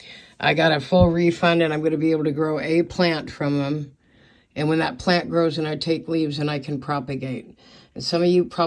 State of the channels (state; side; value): identical; both; correlation 1.00